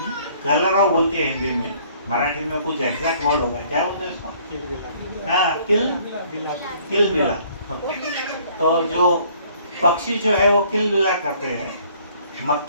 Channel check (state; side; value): inverted; both; correlation -0.59